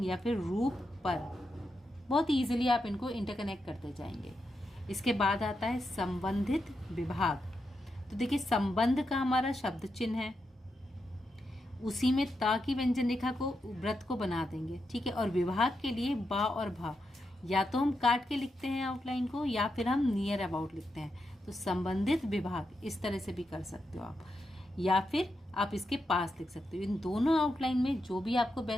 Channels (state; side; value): normal; both; correlation 0.85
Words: या फिर रूप पर बहुत ईजिली आप इनको इंटरकनेक्ट करते जाएंगे। इसके बाद आता है संबंधित विभाग। तो देखिए संबंध का हमारा शब्द चिन्ह है, उसी में ता की व्यंजन रेखा को व्रत को बना देंगे, ठीक है। और विभाग के लिए बा और भा या तो हम काट के लिखते हैं आउटलाइन को या फिर हम नियर अबाउट लिखते हैं। तो संबंधित विभाग इस तरह से भी कर सकते हो आप, या फिर आप इसके पास लिख सकते हो। इन दोनों आउटलाइन में जो भी आपको